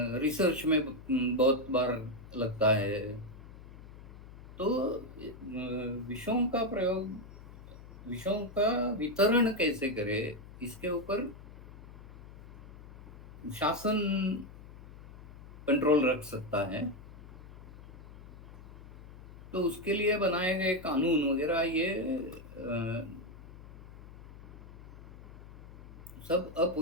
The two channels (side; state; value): left; noise; hum, 17 dB below the sound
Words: रिसर्च में बहुत बार लगता है। तो विषयों का वितरण कैसे करें, इसके ऊपर शासन कंट्रोल रख सकता है। तो उसके लिए बनाए गए कानून वगैरह ये सब